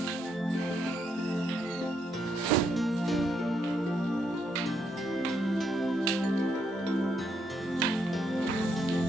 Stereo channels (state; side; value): normal; both; correlation 0.76